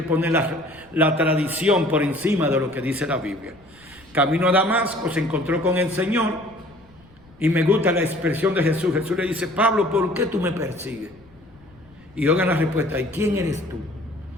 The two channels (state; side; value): noise; left; rumble, 29 dB below the sound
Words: poner la tradición por encima de lo que dice la Biblia. Camino a Damasco, se encontró con el Señor, y me gusta la expresión de Jesús. Jesús le dice: Pablo, ¿por qué tú me persigues? Y oigan la respuesta: ¿y quién eres tú?